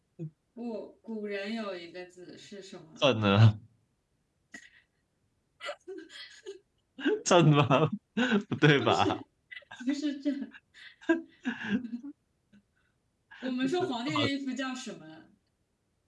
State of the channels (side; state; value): both; identical; correlation 1.00